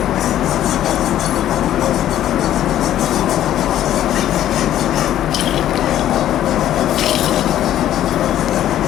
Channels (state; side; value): quieter; right; 12.0 dB